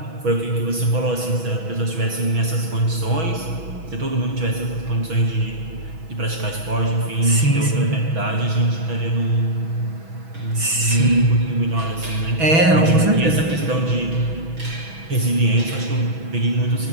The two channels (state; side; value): late; left; 6.1 ms